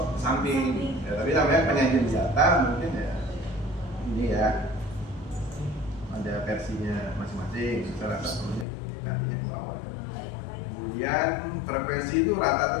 samping ya, tapi namanya penyajian data mungkin ya ini ya ada versinya masing-masing. Saya rasa perlunya gantinya ke bawah. Kemudian frekuensi itu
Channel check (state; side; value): drops out; right; at 8.7 s